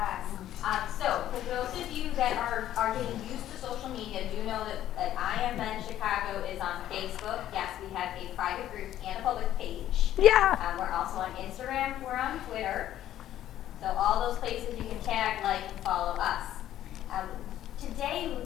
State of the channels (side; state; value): right; quieter; 12.3 dB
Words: So for those of you that are getting used to social media, do know that I Am Men Chicago is on Facebook. Yes, we have a private group and a public page. Yeah. We're also on Instagram. We're on Twitter. So all those places you can tag, like, and follow us. Today, we